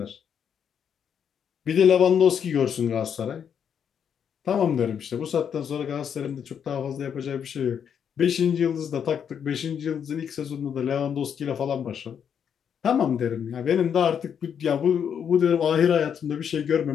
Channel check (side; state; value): right; quieter; 7.9 dB